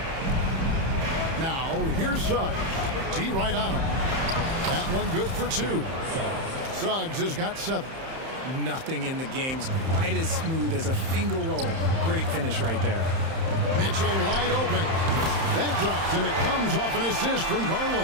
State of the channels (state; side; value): late; left; 31 ms